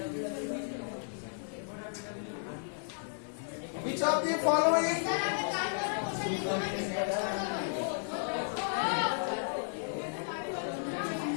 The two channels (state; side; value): silent; right; digital silence